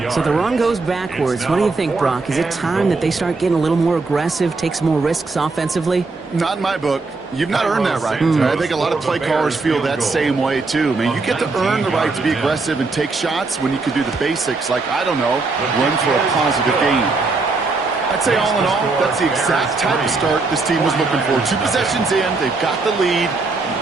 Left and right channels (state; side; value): quieter; left; 3.8 dB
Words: So the run goes backwards. What do you think, Brock? Is it time that they start getting a little more aggressive, take some more risks offensively? Not in my book. You've not earned that right. I think a lot of play callers feel that same way, too. I mean, you get to earn the right to be aggressive and take shots when you can do the basics, like, I don't know, run for a positive gain. I'd say all in all, that's the exact type of start this team was looking for. 2 possessions in, they've got the lead,